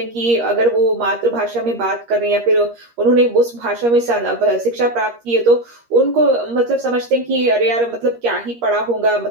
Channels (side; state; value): left; late; 13 ms